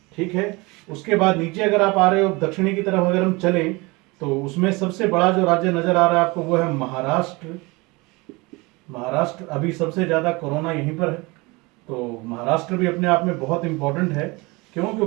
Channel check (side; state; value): left; quieter; 24.9 dB